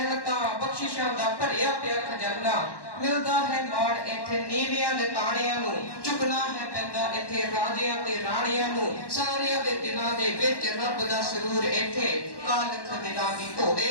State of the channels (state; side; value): late; right; 1.1 ms